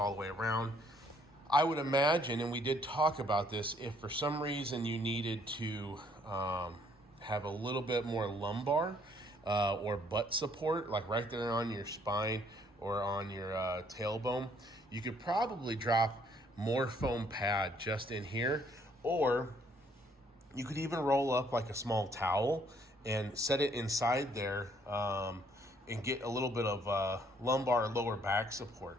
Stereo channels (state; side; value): normal; both; correlation 0.65